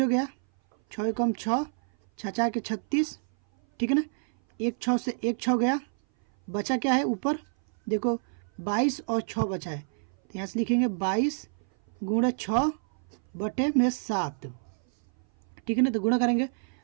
गया, 6 कम 6, 6 के 36, ठीक है ना, 1 6 से 1 6 गया, बचा क्या है ऊपर देखो 22 और 6 बचा है, तो यहाँ से लिखेंगे 22 गुणा 6 बटे में 7, ठीक है ना। तो गुणा करेंगे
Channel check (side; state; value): left; silent; 58 dB below the other